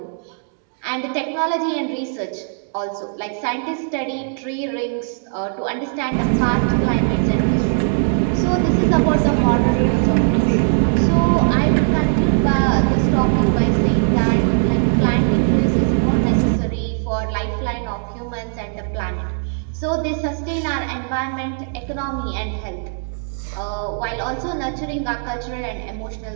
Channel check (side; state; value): left; silent; digital silence